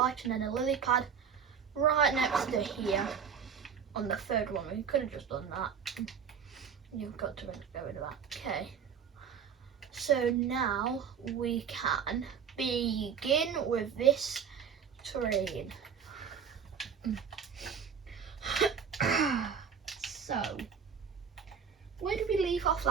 and then a lily pad right next to here on the 3rd one. We could have just done that. You've got to go into that. Okay, so now we can begin with this train. So where did we leave off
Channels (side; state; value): left; quieter; 7.2 dB